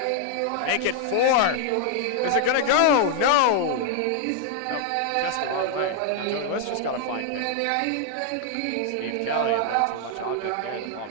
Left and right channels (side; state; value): both; different; correlation 0.00